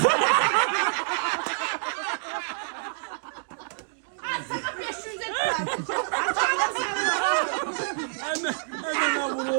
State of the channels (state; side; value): silent; left; digital silence